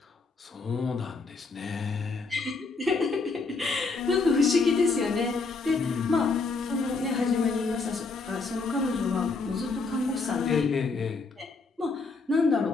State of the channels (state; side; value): quieter; right; 4.1 dB